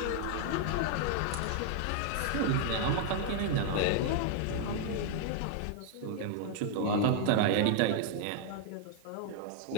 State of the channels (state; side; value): different; both; correlation 0.00